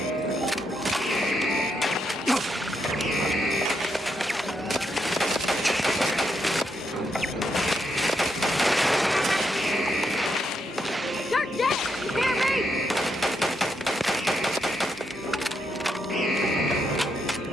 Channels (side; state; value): both; normal; correlation 0.80